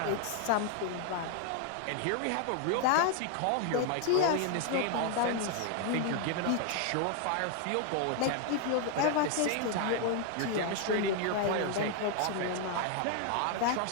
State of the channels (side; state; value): both; different; correlation 0.00